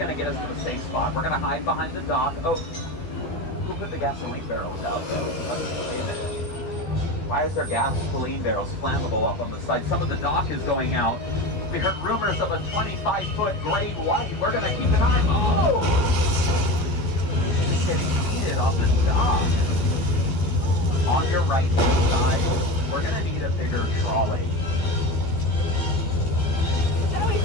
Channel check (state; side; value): late; right; 13 ms